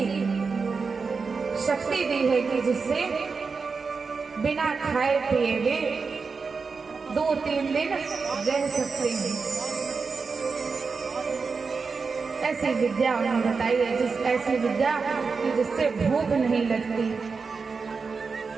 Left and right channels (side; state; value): left; quieter; 4.9 dB